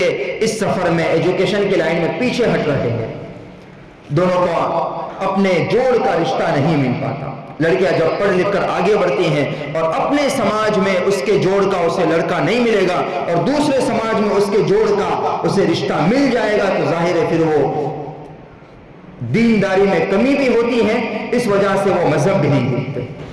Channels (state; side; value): identical; both; correlation 1.00